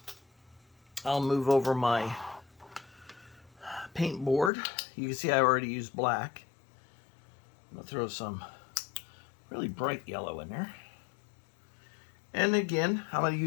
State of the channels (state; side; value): drops out; right; at 4.5 s